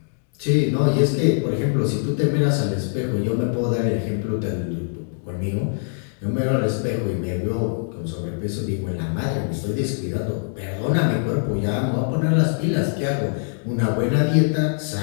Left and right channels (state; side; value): silent; right; digital silence